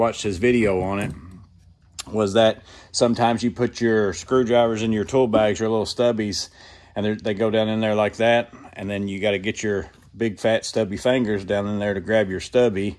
his video on it, was that sometimes you put your screwdrivers in your tool bags, your little stubbies, and they go down in there like that, and then you got to get your big fat stubby fingers down in there to grab your stubby,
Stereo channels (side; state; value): both; identical; correlation 1.00